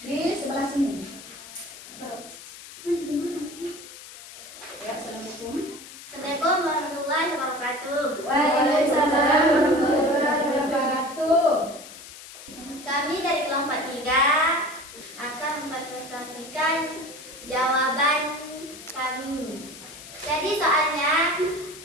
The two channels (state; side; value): noise; left; hiss, 15 dB below the sound